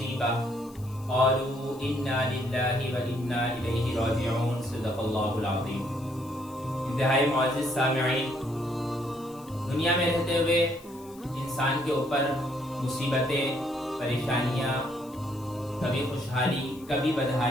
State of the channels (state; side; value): noise; left; hiss, 23 dB below the sound